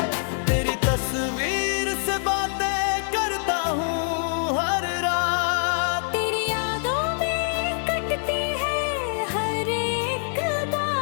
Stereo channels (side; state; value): right; silent; 62 dB below the other